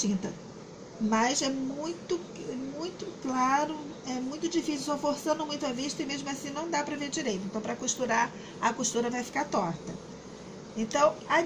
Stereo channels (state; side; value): identical; both; correlation 1.00